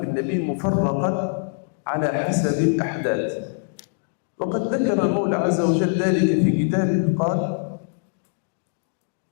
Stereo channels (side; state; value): right; silent; 62 dB below the other